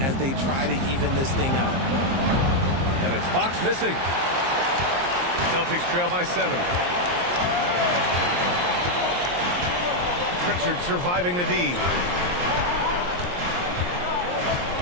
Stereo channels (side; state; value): left; late; 23 ms